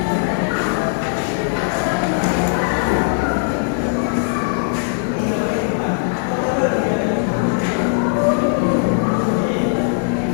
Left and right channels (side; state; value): right; silent; digital silence